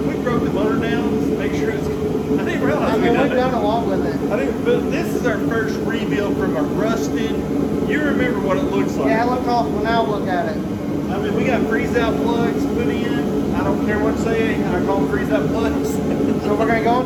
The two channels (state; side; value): identical; both; correlation 1.00